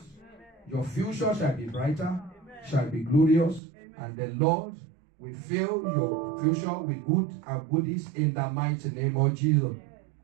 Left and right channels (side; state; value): left; drops out; at 3.6 s